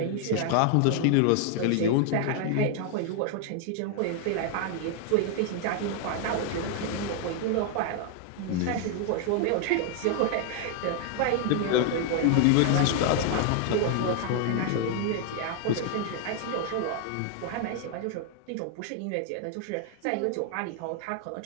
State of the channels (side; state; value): both; different; correlation 0.00